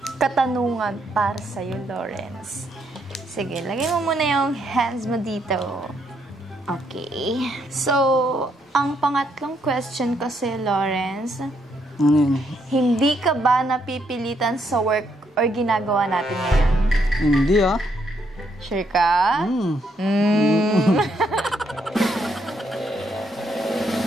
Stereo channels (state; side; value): normal; both; correlation 0.75